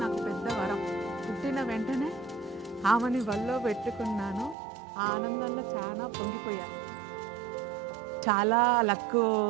నాకు పెద్ద వరం. పుట్టిన వెంటనే ఆమెని వల్లో పెట్టుకున్నాను. ఆ ఆనందంలో చాలా పొంగిపోయాను. చాలా లక్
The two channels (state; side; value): drops out; left; at 4.5 s